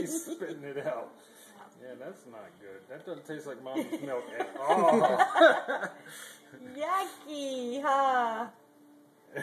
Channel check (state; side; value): identical; both; correlation 1.00